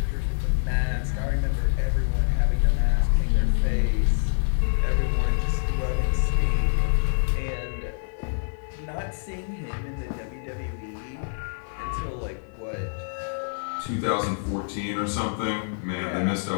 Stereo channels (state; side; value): silent; right; 58 dB below the other